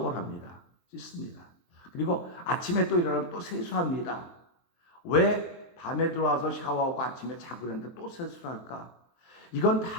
합니다. 씻습니다. 그리고 아침에 또 일어나면 또 세수합니다. 왜 밤에 들어와서 샤워하고 아침에 자고 있는데 또 세수를 할까? 이건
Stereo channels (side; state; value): right; late; 23 ms